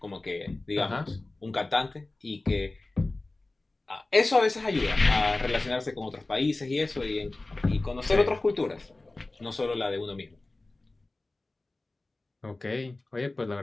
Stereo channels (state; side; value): quieter; right; 3.0 dB